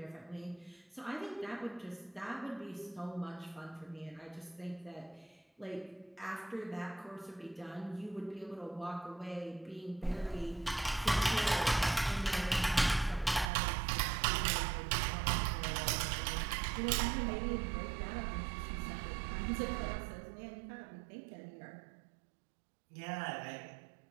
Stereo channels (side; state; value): left; drops out; at 13.5 s